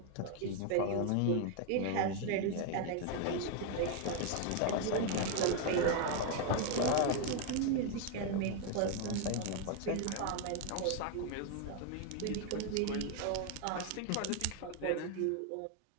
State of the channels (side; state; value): both; different; correlation 0.01